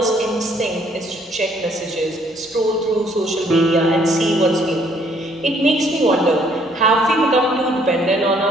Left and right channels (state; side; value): normal; both; correlation 0.64